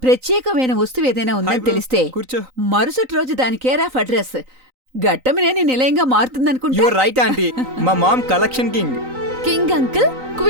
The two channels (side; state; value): left; late; 3.9 ms